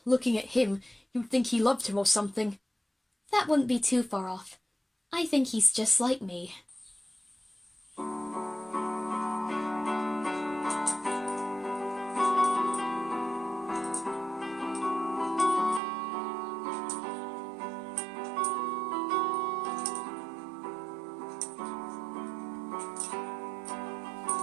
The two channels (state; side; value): drops out; left; at 15.8 s